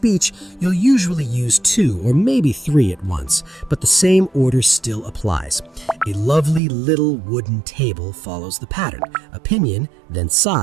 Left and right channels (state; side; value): drops out; left; at 6.6 s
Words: you'll usually use 2 or maybe 3 at once, but the same order still applies. A lovely little wooden table follows the pattern: opinion, then